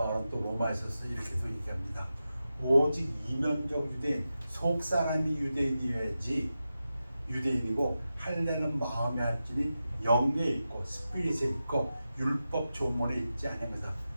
또 로마에서 이렇게도 얘기합니다. 오직 이면적 유대인, 속사람이 유대인이어야지 유대인이고, 할례는 마음에 할지니 영에 있고 스피릿에 있고 율법 조문에 있지 않습니다.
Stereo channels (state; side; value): inverted; both; correlation -0.91